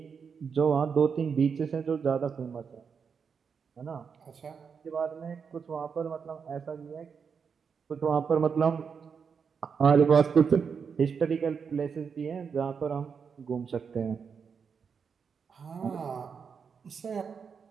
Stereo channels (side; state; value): left; quieter; 6.2 dB